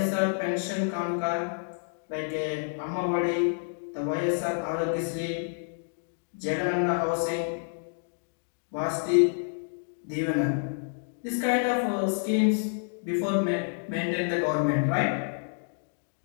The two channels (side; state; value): right; silent; digital silence